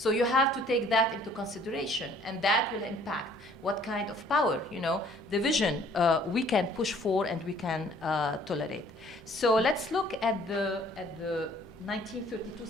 you have to take that into consideration, and that will impact what kind of power, division we can push for and we can tolerate. So let's look at the 1932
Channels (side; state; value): both; normal; correlation 0.57